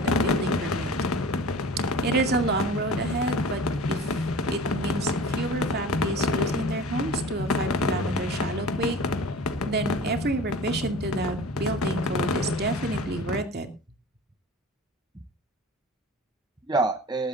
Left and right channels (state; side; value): normal; both; correlation 0.38